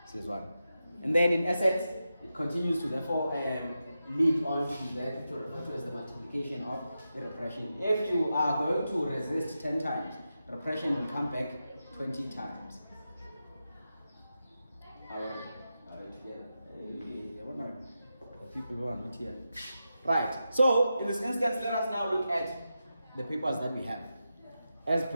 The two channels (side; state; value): both; inverted; correlation -0.89